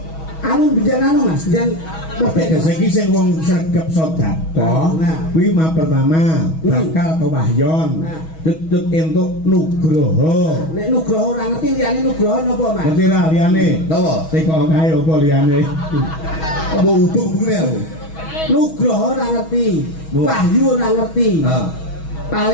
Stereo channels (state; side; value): late; right; 6.2 ms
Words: Anu bijan anu Mas, bijan ya saiki sing wong sregep sedekah Nah. kuwi mah pertama bakal kewahyon. Nah. Cecek entuk nugroho. Nek nugroho ora ngerti liyane nugroho napa Mas? Ngerti ra liyane? Napa? Teko kae apa liyane? Apa uduk begini aku? Nugroho ora ngerti, Bu. wahyu ora ngerti. Nah,